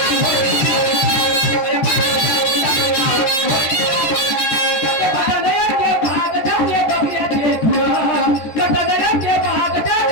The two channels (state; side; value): late; right; 14 ms